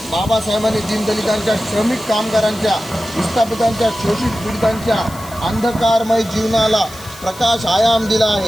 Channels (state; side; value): noise; left; hiss, 18 dB below the sound